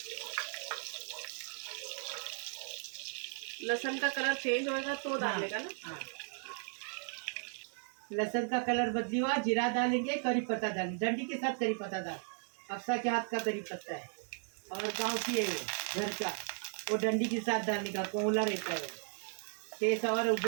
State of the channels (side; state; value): left; silent; 54 dB below the other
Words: लहसुन का कलर चेंज होएगा तो डालेगा ना। हाँ। लहसुन का कलर बदली हुआ, जीरा डालेंगे, करी पत्ता डालेंगे, डंडी के साथ करी पत्ता डाल। अक्सा के हाथ का करी पत्ता है, और गांव की है घर का, वो डंडी के साथ डालने का, कोला रहता है, टेस्ट और